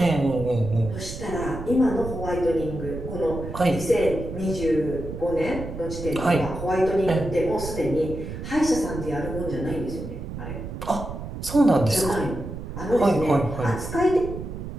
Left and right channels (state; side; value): noise; right; rumble, 8 dB below the sound